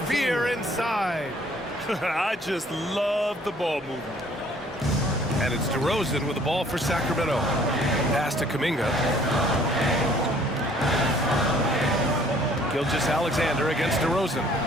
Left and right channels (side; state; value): both; normal; correlation 0.58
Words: fear inside. I just love the ball movement. And it's DeRozan with the ball for Sacramento. Pass to Kuminga. Gilgeous-Alexander against DeRozan.